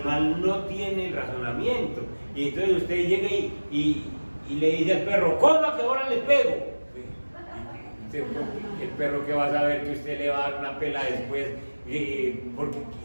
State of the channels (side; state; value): both; inverted; correlation -1.00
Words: no tiene el razonamiento. Y entonces usted llega y le dice al perro, coma que ahora le pego. El perro que va a saber que usted le va a dar una pela después, porque